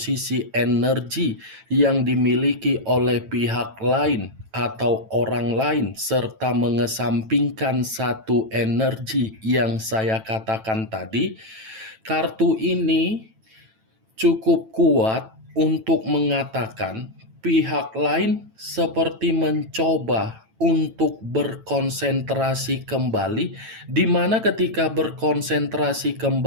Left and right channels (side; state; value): left; late; 9.1 ms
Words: energi yang dimiliki oleh pihak lain atau orang lain, serta mengesampingkan satu energi yang saya katakan tadi, kartu ini cukup kuat untuk mengatakan pihak lain seperti mencoba untuk berkonsentrasi kembali, di mana ketika berkonsentrasi